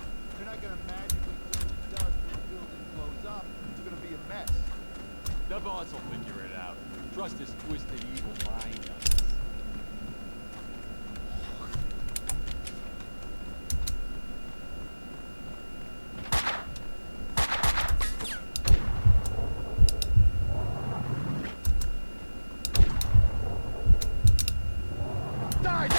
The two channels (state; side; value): inverted; both; correlation -1.00